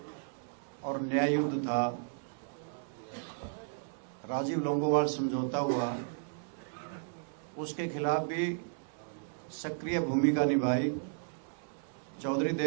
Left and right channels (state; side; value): silent; left; 55 dB below the other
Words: और न्याय युद्ध था, राजीव लोंगोवाल समझौता हुआ, उसके खिलाफ भी सक्रिय भूमिका निभाई। चौधरी